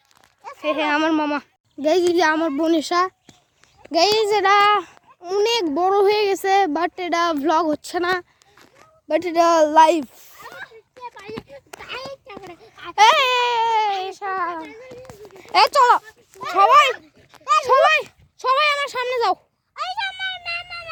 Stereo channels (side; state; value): both; identical; correlation 1.00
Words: আমার মামা গাইজ, যে আমার বোনেশা গাইজ, এটা অনেক বড় হয়ে গেছে, বাট এটা ভ্লগ হচ্ছে না, বাট এটা লাইভ। চলো সবাই সবাই সবাই আমার সামনে যাও।